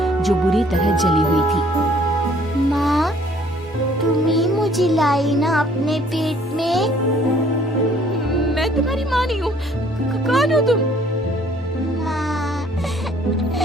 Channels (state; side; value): normal; both; correlation 0.59